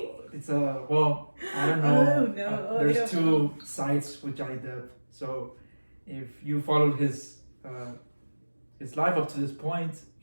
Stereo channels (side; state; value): both; inverted; correlation -1.00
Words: It's well, I don't know. Oh no. There's two sides with Johnny Depp. So if you followed his life up to this point,